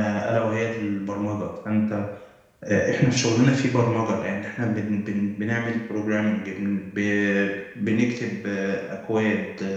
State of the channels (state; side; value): identical; both; correlation 1.00